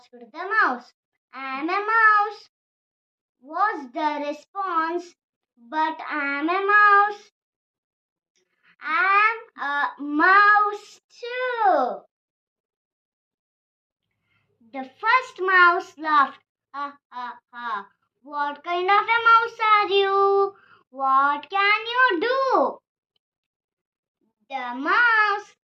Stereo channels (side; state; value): both; identical; correlation 1.00